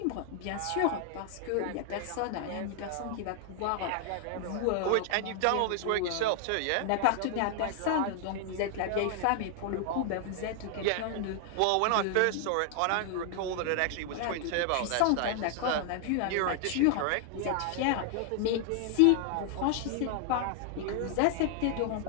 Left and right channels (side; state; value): both; different; correlation 0.00